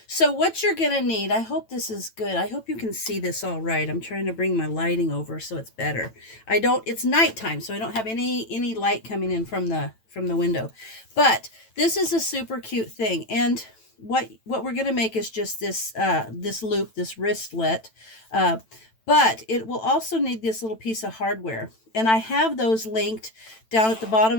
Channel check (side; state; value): right; late; 9.0 ms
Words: So what you're going to need, I hope this is good. I hope you can see this all right. I'm trying to bring my lighting over so it's better. It's nighttime, so I don't have any light coming in from the window. But this is a super cute thing. And what we're going to make is just this loop, this wristlet. But it will also need this little piece of hardware. And I have those linked down at the bottom